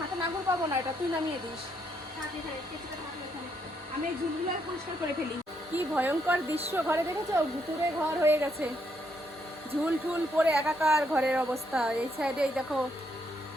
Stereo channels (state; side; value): normal; both; correlation 0.75